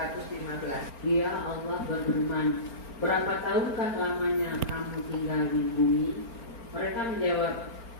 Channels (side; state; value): right; late; 4.4 ms